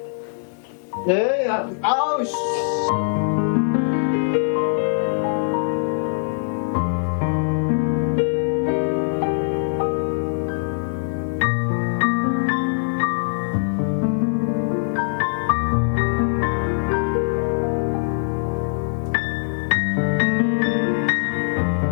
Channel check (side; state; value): right; silent; digital silence